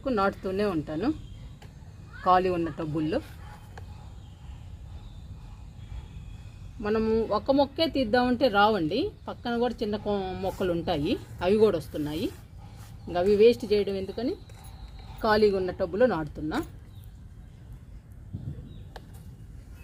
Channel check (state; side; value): identical; both; correlation 1.00